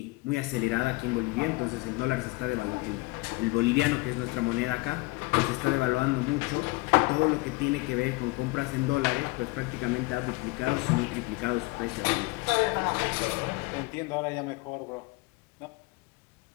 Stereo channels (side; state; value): right; quieter; 24.0 dB